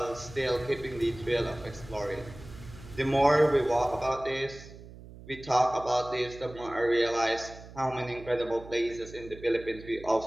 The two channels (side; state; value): right; noise; hum, 17 dB below the sound